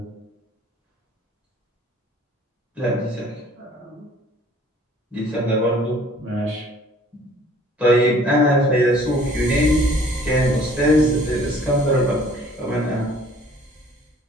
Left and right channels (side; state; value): both; normal; correlation 0.54